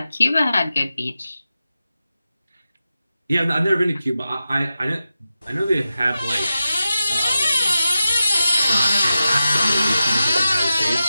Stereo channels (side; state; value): both; inverted; correlation -0.92